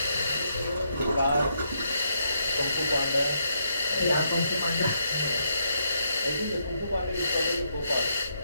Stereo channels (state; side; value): inverted; both; correlation -0.78